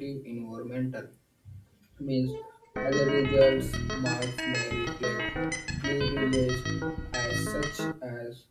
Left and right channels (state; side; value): identical; both; correlation 1.00